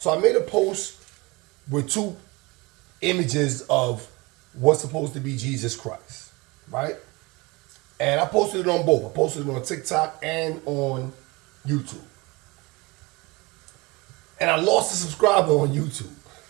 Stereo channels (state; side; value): quieter; left; 24.7 dB